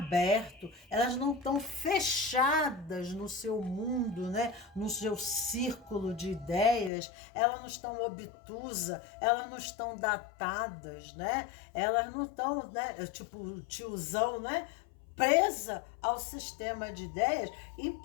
elas não estão fechadas no seu mundo, né, no seu círculo de ideias, elas não estão obtusas, elas não estão datadas, né, elas não estão, né, tipo o tiozão, né, presa ao sistema de ideias,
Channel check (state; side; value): drops out; right; at 6.9 s